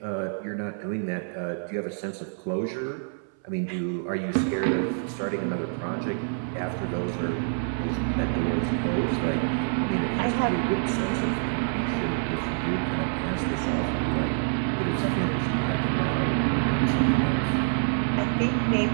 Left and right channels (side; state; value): left; silent; 59 dB below the other